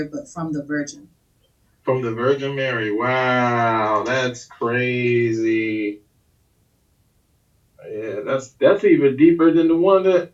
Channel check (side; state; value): both; identical; correlation 1.00